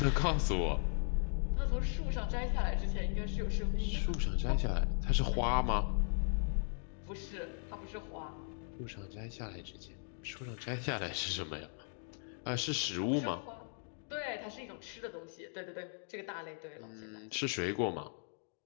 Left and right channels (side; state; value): right; silent; 53 dB below the other